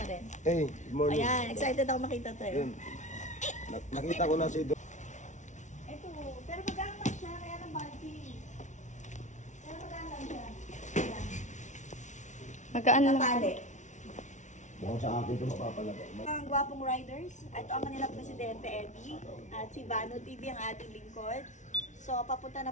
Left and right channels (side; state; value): right; late; 0.36 ms